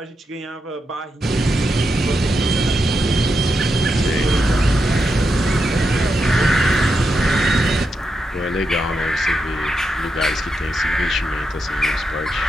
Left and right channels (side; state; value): both; normal; correlation 0.85